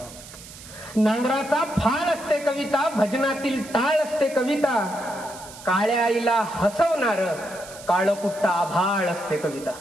नांगराचा फाळ असते कविता, भजनातील टाळ असते कविता. काळ्या आईला हसवणार काळकुट्टा आभाळ असते कविता.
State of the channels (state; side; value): noise; right; hiss, 17 dB below the sound